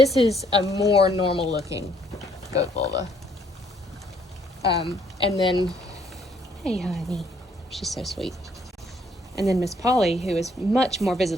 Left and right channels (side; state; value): both; normal; correlation 0.66